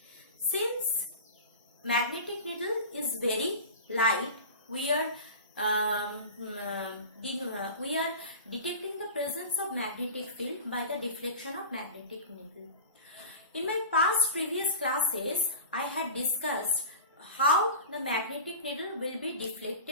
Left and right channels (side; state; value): both; inverted; correlation -0.33